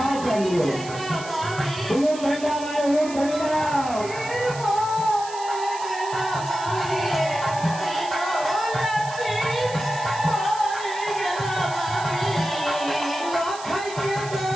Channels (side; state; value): right; noise; hiss, 14 dB below the sound